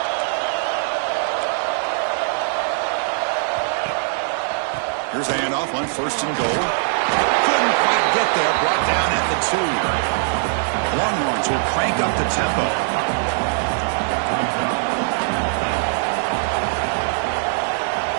Here's a handoff on 1st and goal. Couldn't quite get there. Brought down at the 2. Longhorns will crank up the tempo.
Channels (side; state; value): left; silent; 64 dB below the other